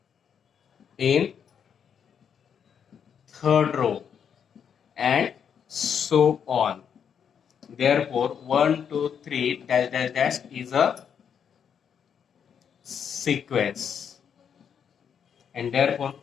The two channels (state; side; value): quieter; right; 7.7 dB